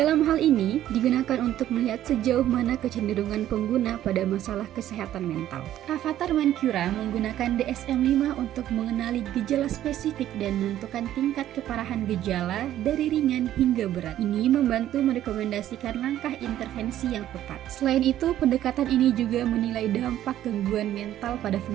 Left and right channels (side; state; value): left; quieter; 12.4 dB